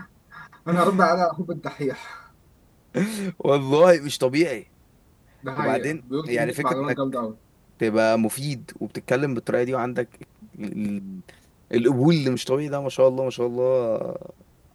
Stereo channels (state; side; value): identical; both; correlation 1.00